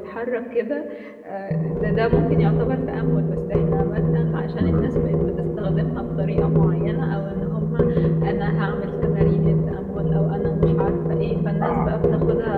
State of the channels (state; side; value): identical; both; correlation 1.00